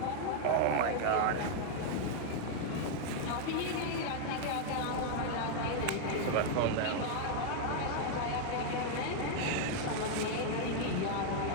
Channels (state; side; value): different; both; correlation 0.00